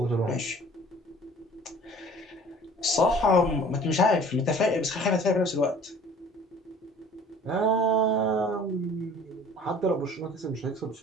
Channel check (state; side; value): normal; both; correlation 0.49